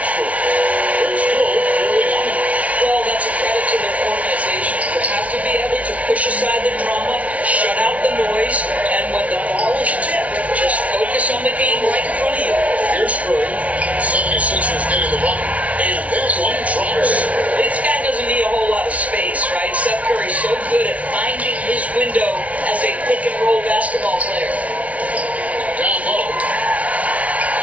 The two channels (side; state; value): left; late; 0.067 ms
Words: Here's Curry. 76ers getting the bucket. And that one drops. This guy doesn't need a whole lot of space, right? Seth Curry's so good at finding his window as a pick and roll basketball player. Down low.